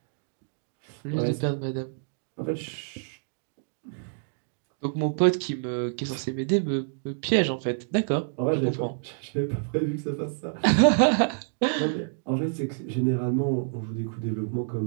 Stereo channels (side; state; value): left; silent; digital silence